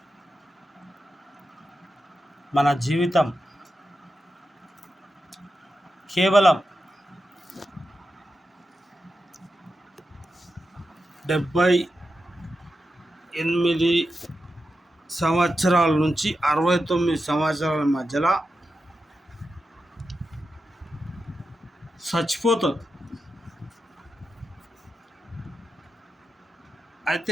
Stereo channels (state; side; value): normal; both; correlation 0.89